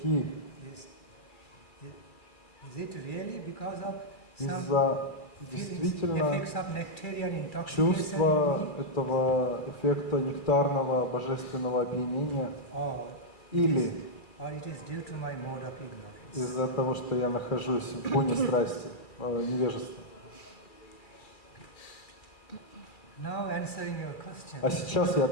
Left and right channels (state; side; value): late; right; 2.3 ms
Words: Is it really because of some из-за feelings, действительно effects of nectarian intoxication чувства in me? этого эффекта нектарного божественного опьянения, Or или it is due to my mode of ignorance? из-за того, что я нахожусь в буне страсти, невежества. Now answering your question. А сейчас я